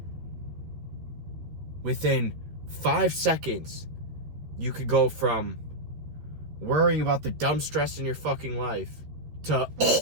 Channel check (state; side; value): late; left; 13 ms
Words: within 5 seconds, you could go from worrying about the dumb stress in your fucking life to